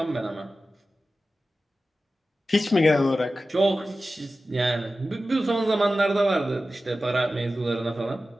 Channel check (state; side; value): normal; both; correlation 0.94